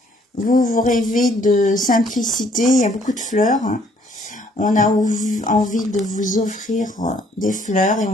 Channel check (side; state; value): both; normal; correlation 0.63